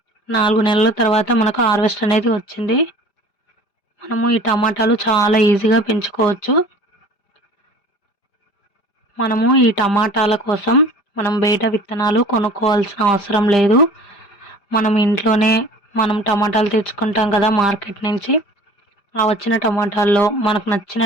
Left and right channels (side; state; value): right; late; 5.0 ms